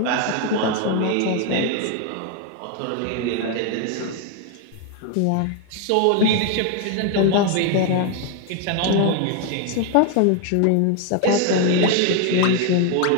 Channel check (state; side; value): different; both; correlation 0.01